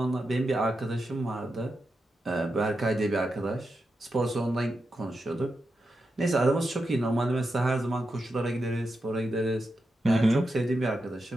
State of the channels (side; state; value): both; normal; correlation 0.88